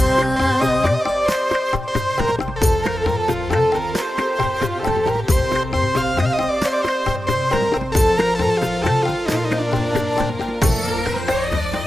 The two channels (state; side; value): normal; both; correlation 0.92